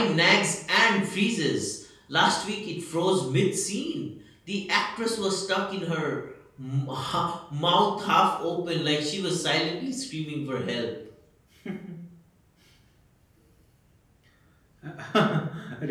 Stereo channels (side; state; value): both; identical; correlation 1.00